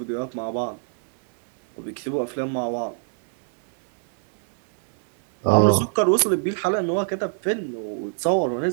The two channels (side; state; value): left; silent; 63 dB below the other